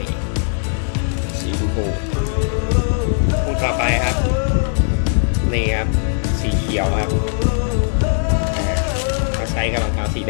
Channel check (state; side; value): silent; right; digital silence